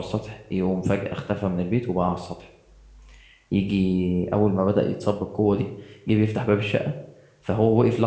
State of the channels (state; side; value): identical; both; correlation 1.00